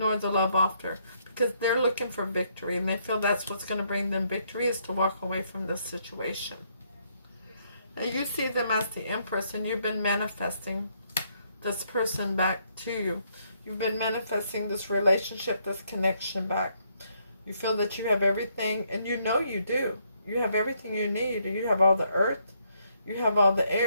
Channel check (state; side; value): inverted; both; correlation -0.72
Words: the love offer, because they're looking for victory, and they feel that's what's going to bring them victory, is to walk away from this situation. And you see them as the Empress, and you've been manifesting this person back to you. You've been manifesting this relationship, this connection back. You feel that you have everything, and you know you do. You have everything you need. You have all the earth, you have all the